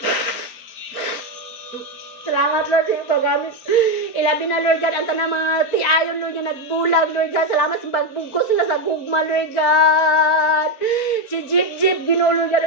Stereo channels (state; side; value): late; right; 4.6 ms